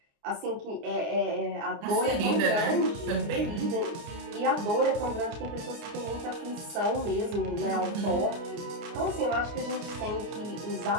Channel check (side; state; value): left; late; 29 ms